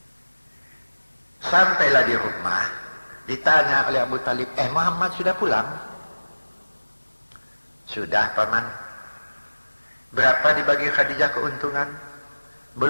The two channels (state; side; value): inverted; both; correlation -1.00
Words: Sampailah di rumah, ditanya oleh Abu Talib, Muhammad sudah pulang? Sudah paman. Berapa dibagi Khadijah keuntungan?